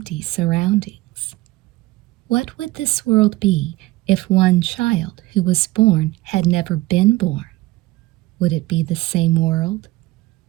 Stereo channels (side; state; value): left; quieter; 18.8 dB